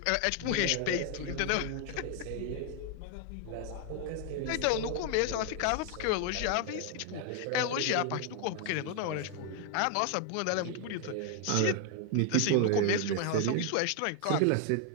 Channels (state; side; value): different; both; correlation 0.00